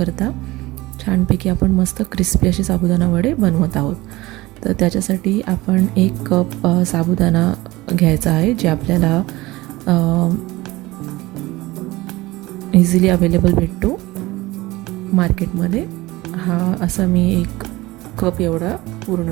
छानपैकी आपण मस्त क्रिस्पी असे साबुदाणा वडे बनवत आहोत. तर त्याच्यासाठी आपण 1 कप साबुदाणा घ्यायचा आहे, जे आपल्याला इझिली अवेलेबल भेटतो मार्केटमध्ये. हा असा मी 1 कप एवढा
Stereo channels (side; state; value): left; quieter; 19.7 dB